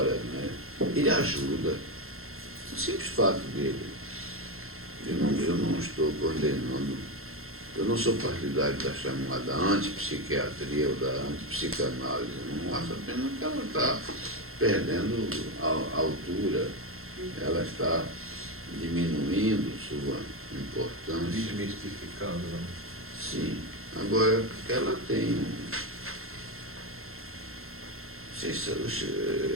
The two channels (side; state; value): left; late; 0.62 ms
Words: né? Ele ajuda. O simples fato dele. Eu não estou condenando, eu não sou partidário da chamada antipsiquiatria ou da antipsicanálise. Eu não acho apenas que ela está perdendo a altura, ela está diminuindo sua importância. Desmistificando, né? Sim. Agora, ela tem...